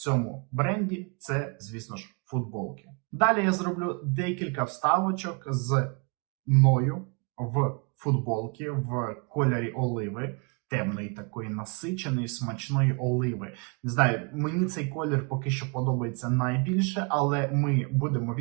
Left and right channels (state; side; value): quieter; left; 34.2 dB